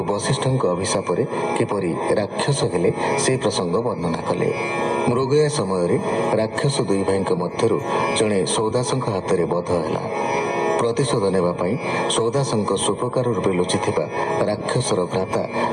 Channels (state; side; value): identical; both; correlation 1.00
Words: ବଶିଷ୍ଠଙ୍କ ଅଭିଶାପରେ କିପରି ରାକ୍ଷସ ହେଲେ ସେ ପ୍ରସଙ୍ଗ ବର୍ଣ୍ଣନା କଲେ। ମୃଗୟା ସମୟରେ ରାକ୍ଷସ ଦୁଇ ଭାଇଙ୍କ ମଧ୍ୟରୁ ଜଣେ ସୌଦାସଙ୍କ ହାତରେ ବଧ ହେଲା। ପ୍ରତିଶୋଧ ନେବା ପାଇଁ ସୌଦାସଙ୍କ ସୁପକାର ରୂପେ ଲୁଚିଥିବା ରାକ୍ଷସର ଭ୍ରାତା